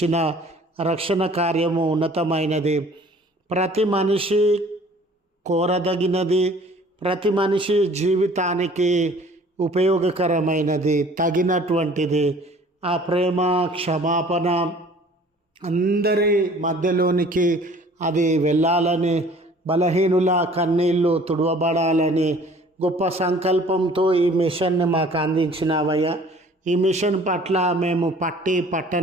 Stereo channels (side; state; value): both; normal; correlation 0.51